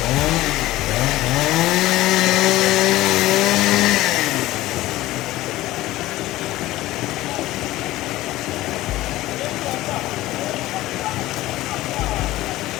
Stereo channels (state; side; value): quieter; right; 16.7 dB